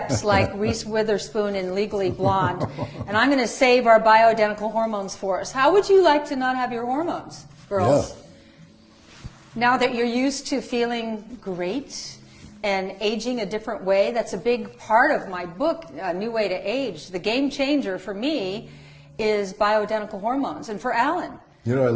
like Reese Witherspoon in Legally Blonde, and I'm going to save our bioidentical hormones for us. How would you like to not have your hormones, girls? Yeah. Now that you're used to feeling great and aging a different way, that's a big part of my book, A New Way to Age. The game changer for me is bioidentical hormones, and for Alan. I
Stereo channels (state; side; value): identical; both; correlation 1.00